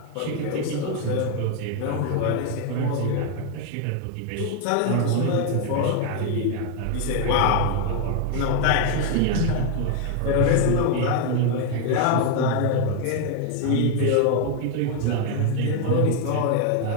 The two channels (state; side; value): different; both; correlation 0.00